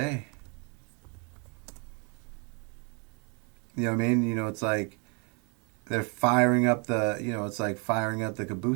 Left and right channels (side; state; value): left; quieter; 36.0 dB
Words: You know what I mean? You know, it's like they're firing up it's like firing up the